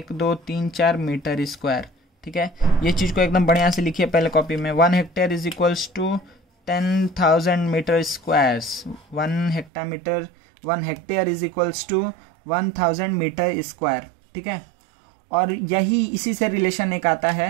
2 3 4 metre square, ठीक है। ये चीज़ को एकदम बढ़िया से लिखिए पहले कॉपी में, 1 hectare is equals to 10,000 metre squares, 1 hectare is equals to 1000 metre square, ठीक है। और यही इसी से रिलेशन एक आता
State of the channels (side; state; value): left; drops out; at 9.7 s